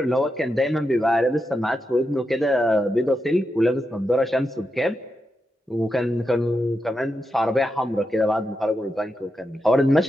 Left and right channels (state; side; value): normal; both; correlation 0.87